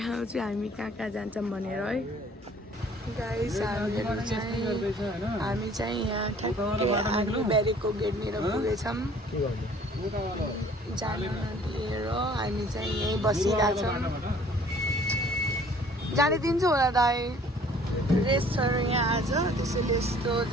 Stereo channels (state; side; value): normal; both; correlation 0.54